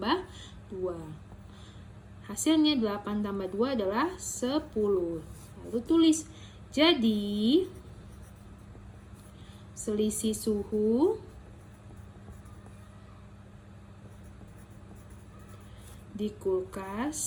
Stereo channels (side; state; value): both; identical; correlation 1.00